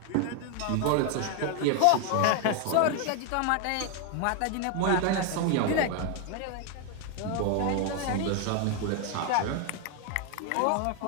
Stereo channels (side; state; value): both; different; correlation 0.01